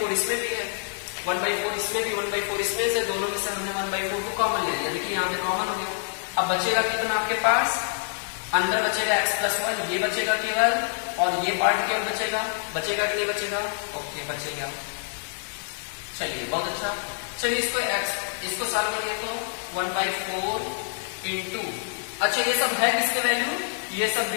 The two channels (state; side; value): silent; right; digital silence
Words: इसमें भी है, 1/4 इसमें भी, 1/4 इसमें से, दोनों में से हमने 1/4 को कॉमन ले लिया, देखिए यहाँ पे कॉमन हो गया। अब बचेगा कितना आपके पास? अंदर बचेगा x प्लस 1, ये बचेगा केवल, और ये पार्ट केवल बचेगा। बचेगा कि नहीं बचेगा? ओके बचेगा। चलिए बहुत अच्छा, चलिए इसको सॉल्व करिए, तो 1/4 इंटू, अच्छा ये सब है किसके वैल्यू? ये सब